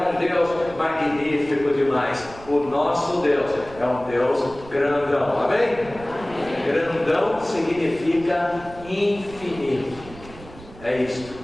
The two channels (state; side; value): noise; right; rumble, 18 dB below the sound